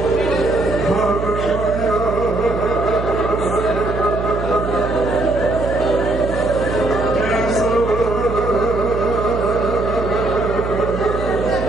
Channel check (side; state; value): right; noise; hum, 6 dB below the sound